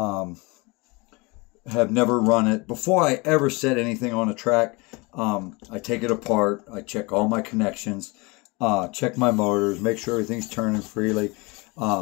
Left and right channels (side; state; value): right; quieter; 26.5 dB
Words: have never run it. Before I ever set anything on a track, I take it apart. I check all my connections, check my motors, make sure everything's turning freely.